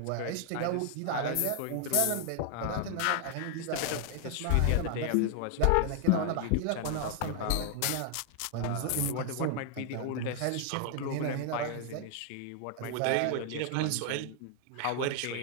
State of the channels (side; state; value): both; different; correlation 0.00